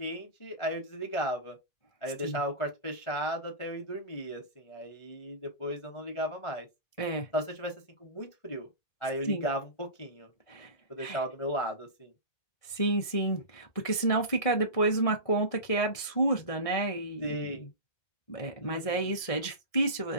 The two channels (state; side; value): late; right; 1.7 ms